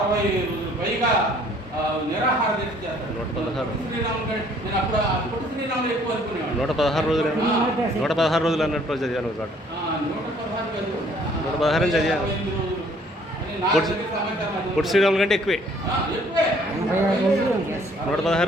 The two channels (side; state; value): both; normal; correlation 0.60